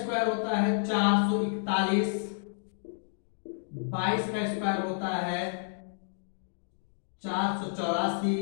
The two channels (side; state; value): right; silent; digital silence